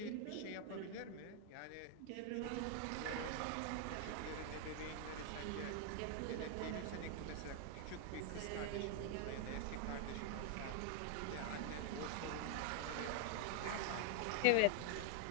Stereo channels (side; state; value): both; different; correlation 0.00